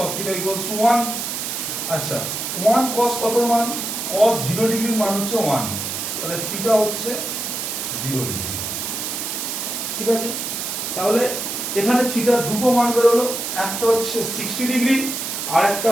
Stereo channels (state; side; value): noise; right; hiss, 4 dB below the sound